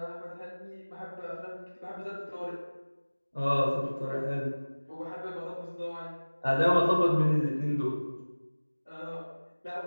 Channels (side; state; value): both; inverted; correlation -1.00